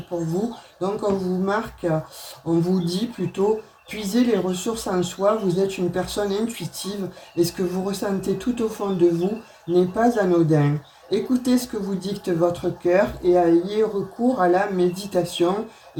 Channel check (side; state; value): both; identical; correlation 1.00